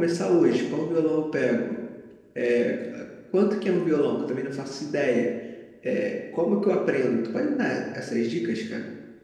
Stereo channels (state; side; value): identical; both; correlation 1.00